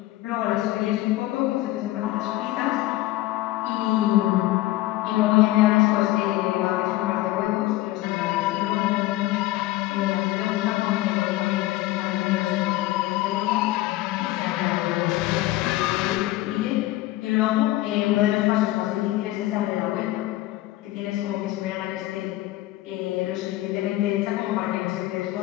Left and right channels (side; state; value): right; quieter; 16.8 dB